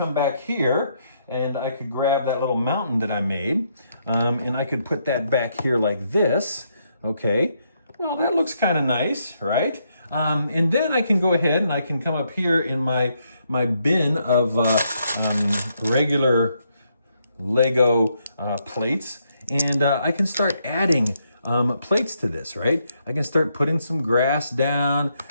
back here and I could grab that little mountain that I made and I could put that back here like this, okay? Well, that looks kind of nice, right? And then I can go ahead and I can come up here in my bin of regular Lego plates, and I can start adding plates to this, right? I can start putting some grass down,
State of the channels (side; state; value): both; inverted; correlation -0.77